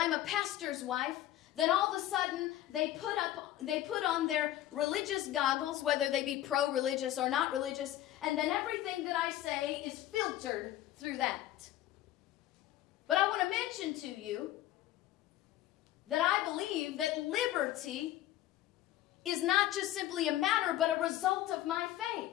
a pastor's wife, then all of a sudden they put on their religious goggles, whether they be pro-religious or not religious, and then everything that I say is filtered through that. But I want to mention to you that I believe that liberty is not just simply a matter, but a result of my faith.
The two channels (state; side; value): quieter; right; 13.7 dB